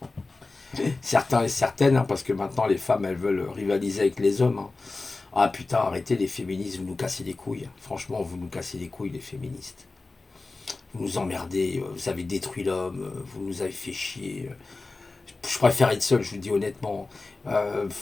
Certains et certaines, hein, parce que maintenant les femmes, elles veulent rivaliser avec les hommes. Hein. Ah putain, arrêtez les féministes, vous nous cassez les couilles. Franchement, vous nous cassez les couilles, les féministes. Vous nous emmerdez, vous avez détruit l'homme, vous nous avez fait chier. Je préfère être seul, je vous le dis honnêtement.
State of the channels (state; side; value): quieter; right; 3.5 dB